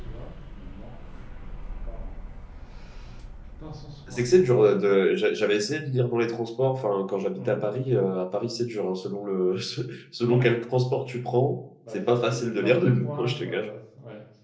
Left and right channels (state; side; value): identical; both; correlation 1.00